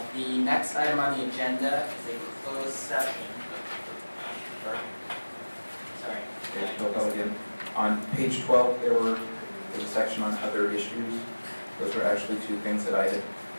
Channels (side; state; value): both; inverted; correlation -1.00